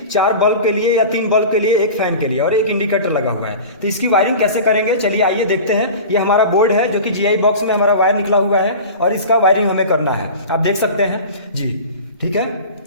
4 बल्ब के लिए या 3 बल्ब के लिए, 1 फैन के लिए और 1 इंडिकेटर लगा हुआ है। तो इसकी वायरिंग कैसे करेंगे, चलिए आइए देखते हैं। ये हमारा बोर्ड है जो कि जीआई बॉक्स में हमारा वायर निकला हुआ है और इसका वायरिंग हमें करना है। आप देख सकते हैं जी, ठीक है।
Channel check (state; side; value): inverted; both; correlation -0.35